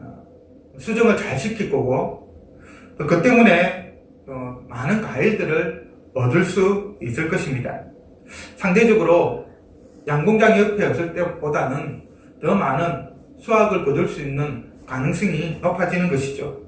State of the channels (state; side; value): identical; both; correlation 1.00